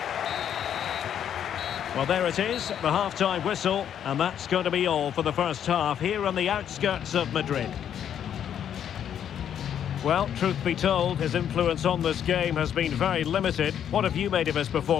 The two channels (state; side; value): quieter; right; 9.4 dB